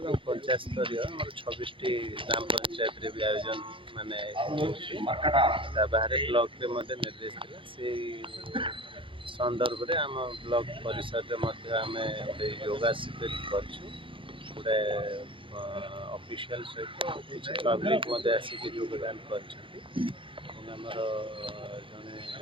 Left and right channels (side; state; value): left; late; 0.25 ms